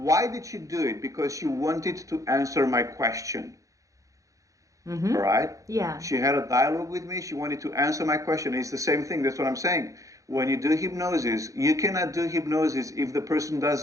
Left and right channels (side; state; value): left; late; 0.16 ms